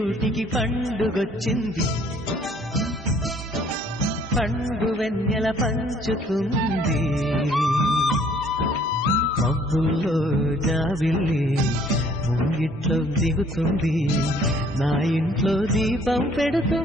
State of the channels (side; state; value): both; normal; correlation 0.59